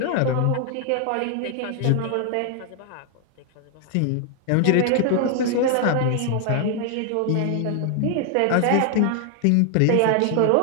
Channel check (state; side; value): different; both; correlation 0.00